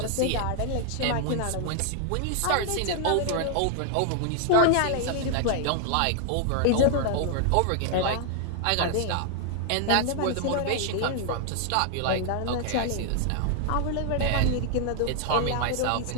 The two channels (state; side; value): different; both; correlation 0.00